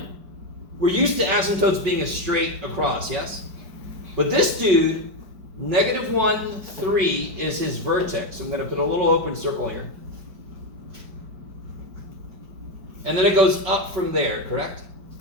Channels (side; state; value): left; late; 4.9 ms